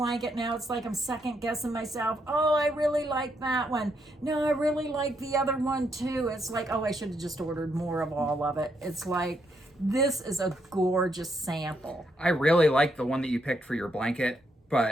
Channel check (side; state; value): both; normal; correlation 0.77